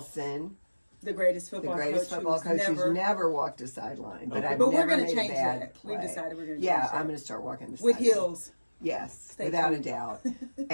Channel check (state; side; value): inverted; both; correlation -1.00